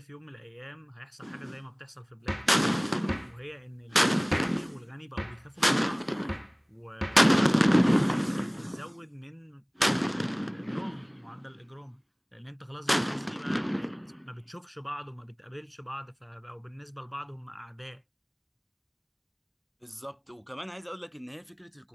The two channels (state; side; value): identical; both; correlation 1.00